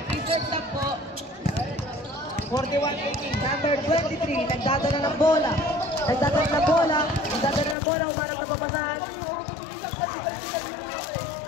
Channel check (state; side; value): drops out; right; at 7.8 s